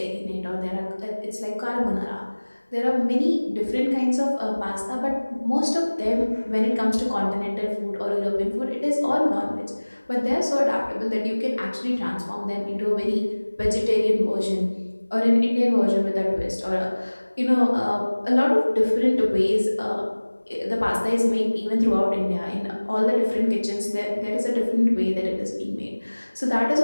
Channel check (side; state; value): both; inverted; correlation -1.00